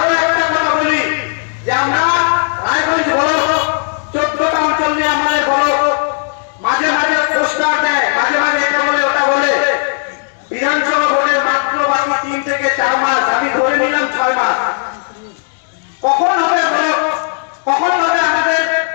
একটা কথা বলি যে আমরা রায়গঞ্জ বলো, 14টা অঞ্চল নিয়ে আমাদের বলো, মাঝে মাঝে পোস্টার দেয়, মাঝে মাঝে এটা বলে ওটা বলে, বিধানসভা ভোটের মাত্র বাকি 3 থেকে 4 মাস, আমি ধরে নিলাম 6 মাস। কখন হবে বলো, কখন হবে আমাদের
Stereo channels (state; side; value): silent; right; 66 dB below the other